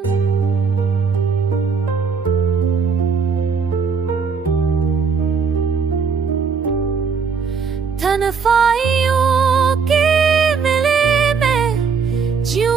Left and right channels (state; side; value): quieter; left; 5.8 dB